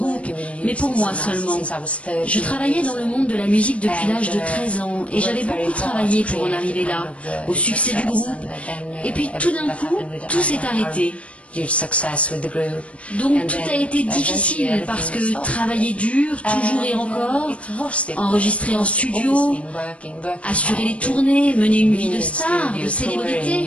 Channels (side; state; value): right; late; 0.063 ms